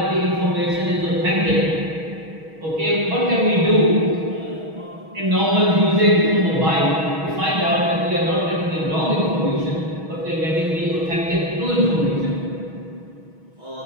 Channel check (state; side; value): late; left; 6.3 ms